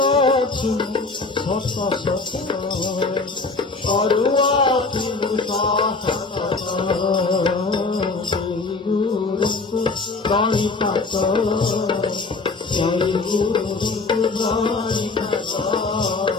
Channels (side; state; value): right; quieter; 3.9 dB